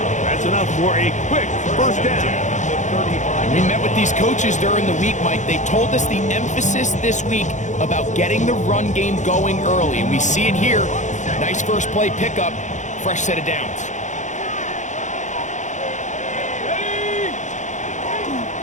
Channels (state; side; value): late; right; 0.35 ms